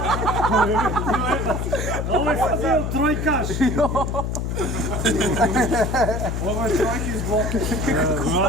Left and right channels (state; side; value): noise; left; hum, 2 dB below the sound